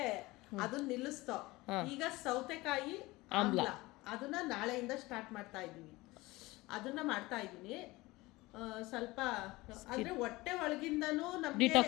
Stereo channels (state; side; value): quieter; right; 20.8 dB